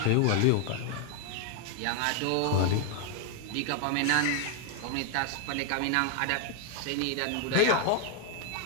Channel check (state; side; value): different; both; correlation 0.01